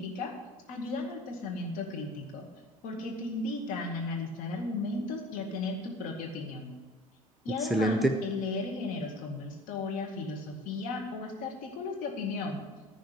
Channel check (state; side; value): normal; both; correlation 0.45